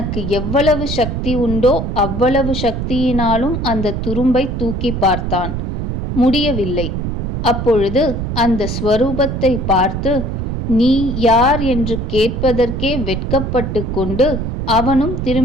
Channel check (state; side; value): noise; right; rumble, 3 dB below the sound